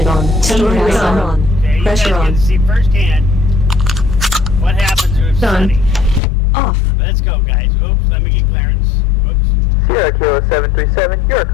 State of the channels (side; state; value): right; drops out; at 6.2 s